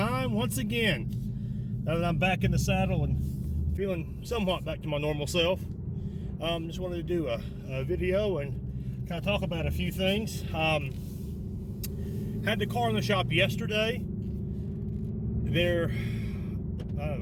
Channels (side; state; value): both; identical; correlation 1.00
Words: once again. Now that I'm back in the saddle and feeling somewhat back to my normal self, just wanted to do a video and kind of talk about a few things. Had the car in the shop yesterday.